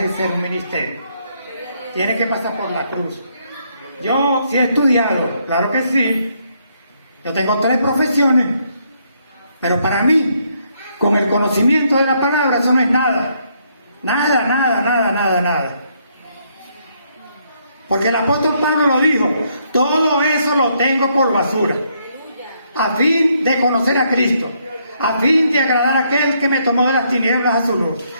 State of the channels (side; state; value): both; inverted; correlation -0.73